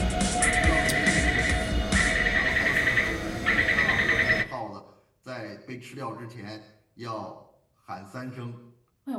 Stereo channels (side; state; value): both; identical; correlation 1.00